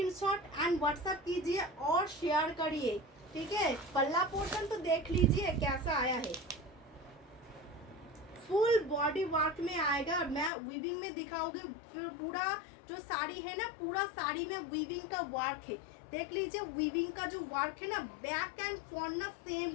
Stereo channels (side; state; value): right; drops out; at 10.5 s